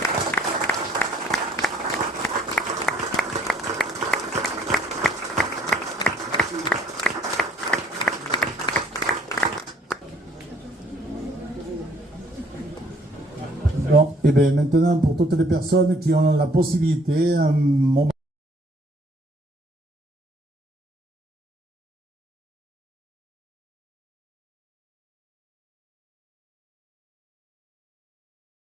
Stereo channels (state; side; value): normal; both; correlation 0.62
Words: Bon, et bien maintenant, pour toutes les personnes qui ont la possibilité, un moment